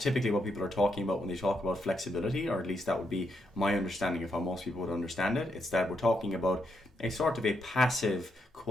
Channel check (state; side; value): normal; both; correlation 0.79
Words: what people are talking about when they talk about flexibility, or at least that would be my understanding of how most people would understand it. It's that we're talking about a sort of a passive